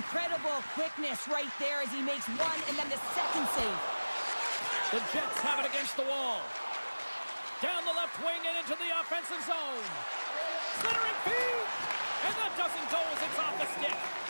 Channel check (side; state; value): both; inverted; correlation -1.00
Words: quickness right there as he makes one and then the second save. The Jets have it against the wall. Down the left wing and into the offensive zone. Centering feed! And that doesn't go as it's off the stick.